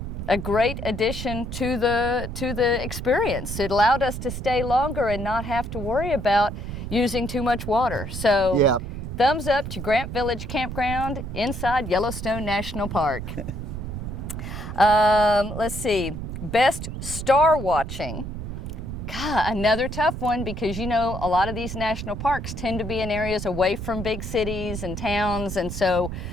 a great addition to the experience. It allowed us to stay longer and not have to worry about using too much water. So Yeah. thumbs up to Grant Village Campground inside Yellowstone National Park. Let's see, best star watching. God, another tough one because you know a lot of these national parks tend to be in areas away from big cities and towns, and so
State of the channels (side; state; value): right; noise; rumble, 7 dB below the sound